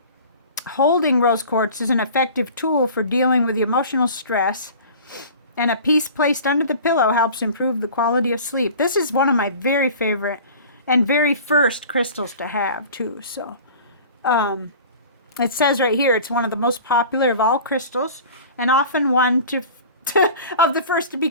holding rose quartz is an effective tool for dealing with emotional stress, and a piece placed under the pillow helps improve the quality of sleep. This is one of my very favorite and very first crystals to have too. So it says right here it's one of the most popular of all crystals and often one of the first to be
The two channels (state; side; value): inverted; both; correlation -0.41